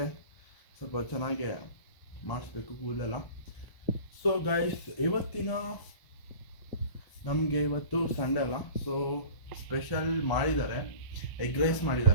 ಸ್ವಲ್ಪ ಚೆನ್ನಾಗಿ ಮಾಡಿಸ್ಬೇಕು ಕೂದಲೆಲ್ಲ. ಸೊ ಗಾಯ್ಸ್, ನಮಗೆ ಇವತ್ತು ಸಂಡೇ ಅಲ್ಲ, ಸೊ ಸ್ಪೆಷಲ್ ಮಾಡಿದ್ದಾರೆ, ಎಗ್ ರೈಸ್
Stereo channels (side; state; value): right; late; 1.0 ms